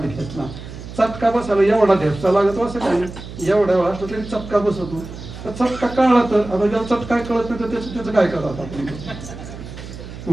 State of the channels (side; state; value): right; noise; hum, 12 dB below the sound